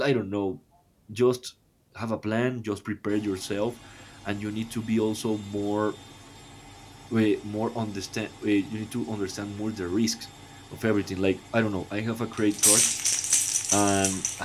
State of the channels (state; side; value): identical; both; correlation 1.00